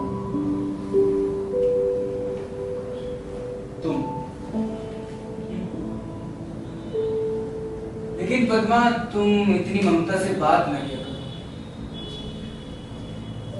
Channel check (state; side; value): identical; both; correlation 1.00